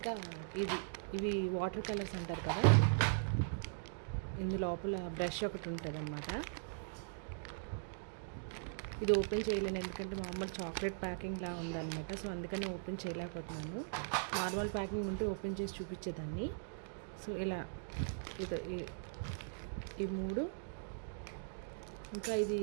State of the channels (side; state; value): left; silent; digital silence